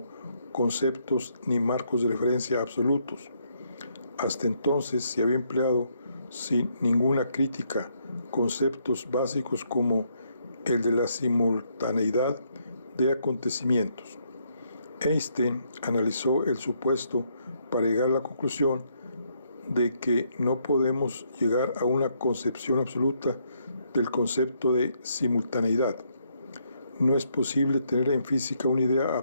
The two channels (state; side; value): inverted; both; correlation -0.73